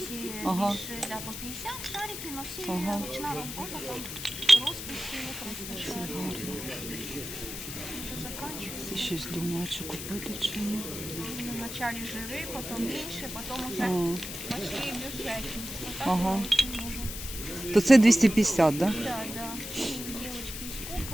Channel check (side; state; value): left; noise; hiss, 8 dB below the sound